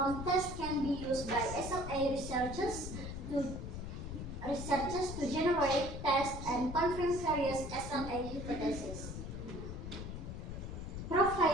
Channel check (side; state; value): left; noise; rumble, 7 dB below the sound